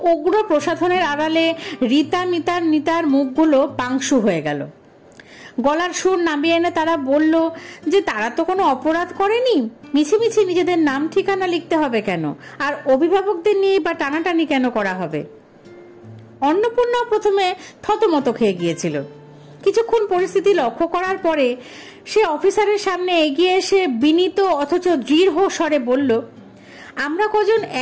উগ্র প্রসাধনের আড়ালে রীতা, মিতার, নিতার মুখগুলো পাংশু হয়ে গেল। গলার সুর নামিয়ে এনে তারা বলল যে তারা তো কোনো অপরাধ করেনি, মিছিমিছি নিজেদের নাম ঠিকানা লিখতে হবে কেন, আর অভিভাবকদের নিয়ে বা টানাটানি কেন করা হবে। অন্নপূর্ণা প্রথমে থতমত খেয়ে গিয়েছিল। কিছুক্ষণ পরিস্থিতি লক্ষ্য করার পরে সে অফিসারের সামনে এগিয়ে এসে বিনীত অথচ দৃঢ় স্বরে বলল, আমরা কজন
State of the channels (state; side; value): identical; both; correlation 1.00